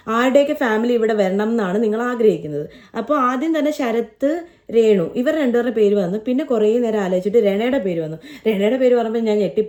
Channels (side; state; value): both; identical; correlation 1.00